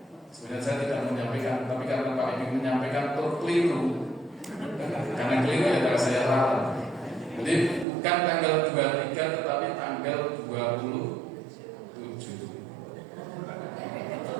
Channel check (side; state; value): left; drops out; at 7.9 s